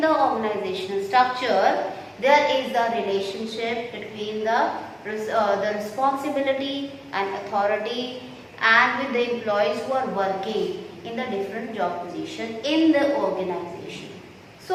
organizational structure, there is the relationship between the responsibility and authority and with the employees who are working in the different job position in the organization.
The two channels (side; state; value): both; identical; correlation 1.00